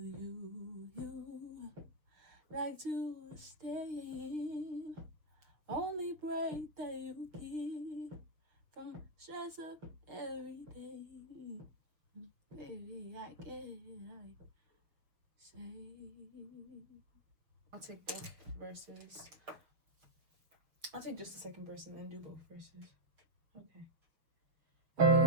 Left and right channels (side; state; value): left; late; 6.3 ms